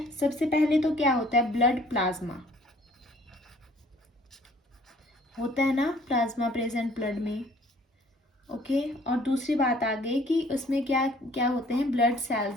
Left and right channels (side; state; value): both; normal; correlation 0.56